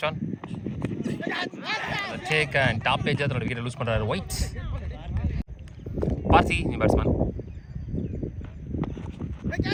one take and top page அதோட விக்கெட் லூஸ் பண்ணுறாரு ஒயிட். பார்த்தி நீ பேட்ஸ்மேன்,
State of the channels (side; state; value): both; identical; correlation 1.00